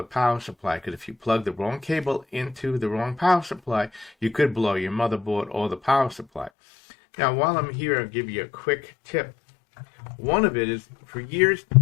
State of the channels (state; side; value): drops out; right; at 6.5 s